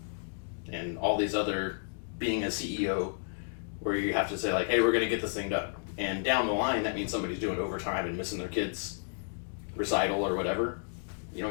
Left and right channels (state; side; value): silent; right; digital silence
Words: and all these other, being a CEO, where you have to say, like, hey, we're going to get this thing done. And down the line, that means somebody's doing overtime and missing their kid's recital or whatever. You